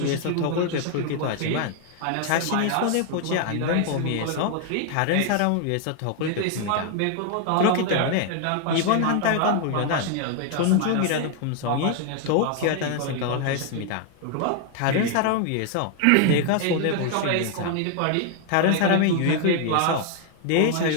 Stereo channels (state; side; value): different; both; correlation 0.00